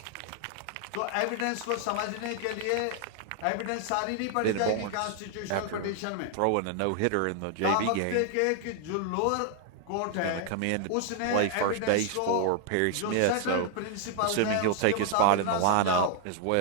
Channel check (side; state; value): both; different; correlation 0.00